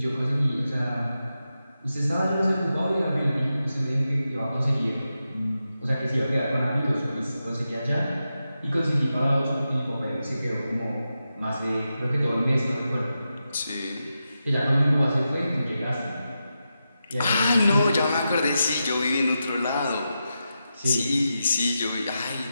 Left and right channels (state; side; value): inverted; both; correlation -0.89